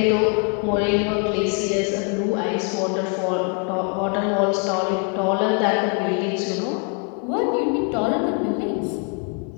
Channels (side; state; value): right; quieter; 38.4 dB